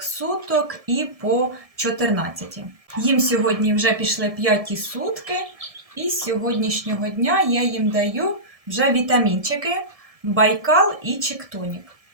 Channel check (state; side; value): late; left; 1.7 ms